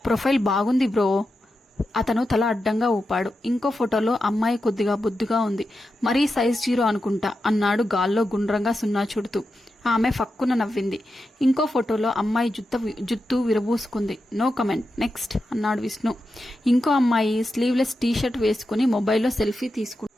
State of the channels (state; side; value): normal; both; correlation 0.89